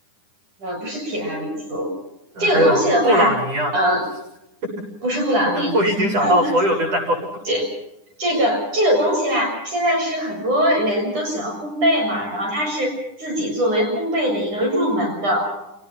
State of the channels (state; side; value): late; left; 9.9 ms